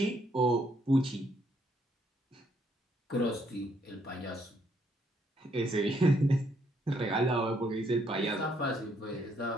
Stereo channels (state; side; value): normal; both; correlation 0.71